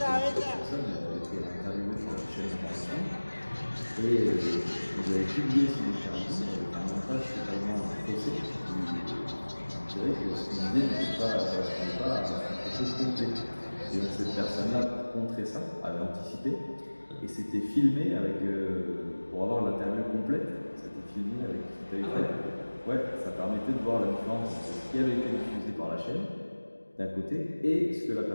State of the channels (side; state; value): both; inverted; correlation -1.00